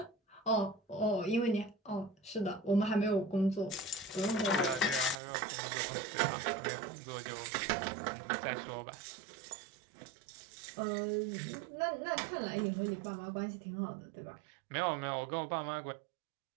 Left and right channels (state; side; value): drops out; left; at 5.2 s